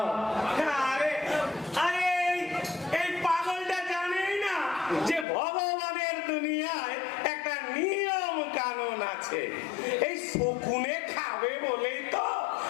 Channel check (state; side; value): drops out; right; at 5.2 s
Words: আরে আরে এই পাগলটা জানেই না যে ভগবানের দুনিয়ায় একটা নিয়ম কানুন আছে। এই শকুনে খাবে বলেই তো